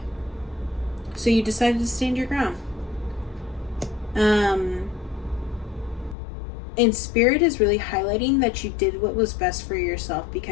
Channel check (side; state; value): right; drops out; at 6.2 s